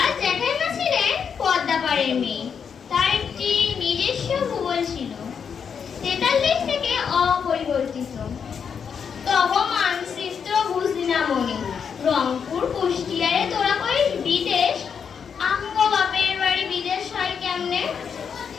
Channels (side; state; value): right; quieter; 6.9 dB